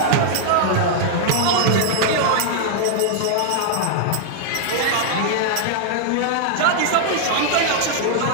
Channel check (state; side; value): different; both; correlation -0.01